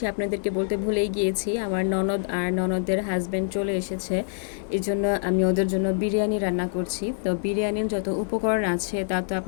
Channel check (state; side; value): silent; right; digital silence